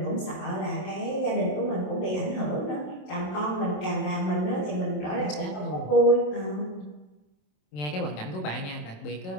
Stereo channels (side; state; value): right; late; 27 ms